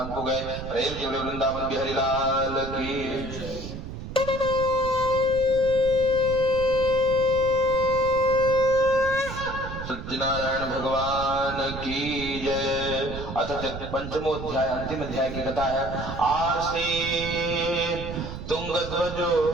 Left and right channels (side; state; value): right; noise; rumble, 9 dB below the sound